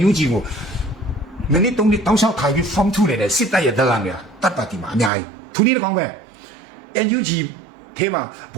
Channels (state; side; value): drops out; left; at 5.1 s